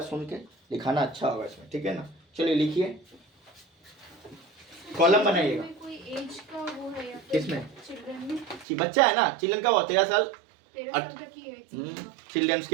सुन के लिखाना अच्छा होगा इसमें, ठीक है ना। चलिए लिखिए, कॉलम बनाइएगा, कोई एज का वो है या किसमें, चिल्ड्रन में, कि बच्चा है ना, चिल्ड्रन का वो 13 साल, 13 साल तक की एज, चिल्ड्रंस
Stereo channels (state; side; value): drops out; left; at 8.7 s